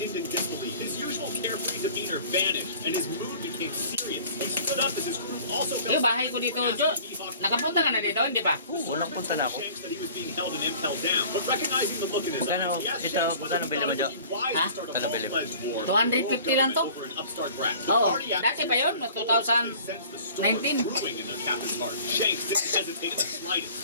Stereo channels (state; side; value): inverted; both; correlation -0.47